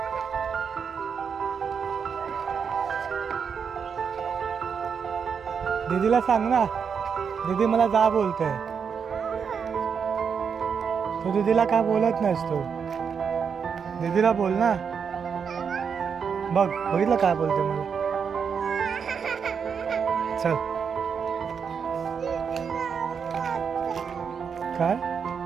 दीदीला सांग ना दीदी मला जा बोलते तू दीदीला काय बोलत नाहीस तू दीदीला बोल ना बघ बघितलं काय बोलते मला चल काय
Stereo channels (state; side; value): quieter; left; 6.5 dB